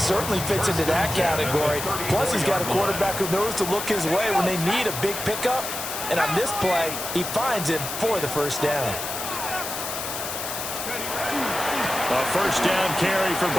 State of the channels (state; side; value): noise; left; hiss, 5 dB below the sound